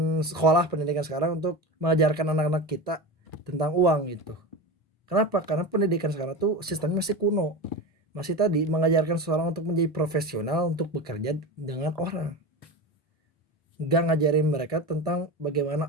sekolah pendidikan sekarang untuk mengajarkan anak-anak kita tentang uang itu. Kenapa? Karena pendidikan sekarang tuh sistemnya masih kuno. Masih tadi mengajarkan seseorang untuk menjadi profesional untuk bekerja dengan orang. Gak ngajarin mereka tentang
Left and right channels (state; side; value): normal; both; correlation 0.25